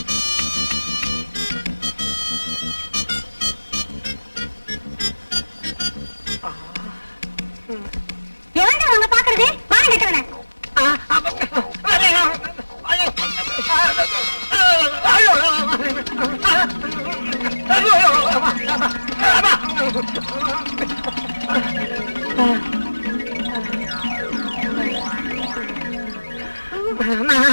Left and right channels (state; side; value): inverted; both; correlation -1.00